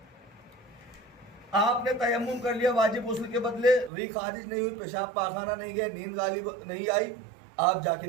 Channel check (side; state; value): left; drops out; at 3.9 s